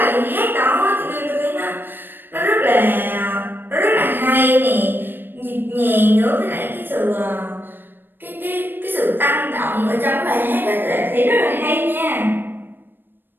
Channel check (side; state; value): left; late; 0.096 ms